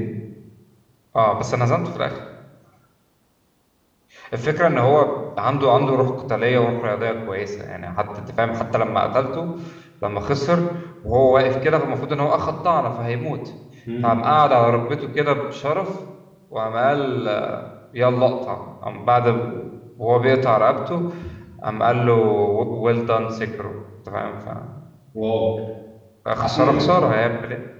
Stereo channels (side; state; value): both; identical; correlation 1.00